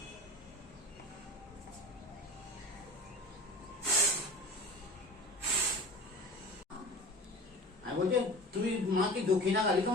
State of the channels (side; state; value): both; normal; correlation 0.35